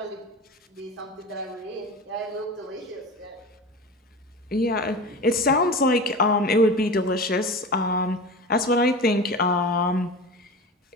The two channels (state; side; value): normal; both; correlation 0.31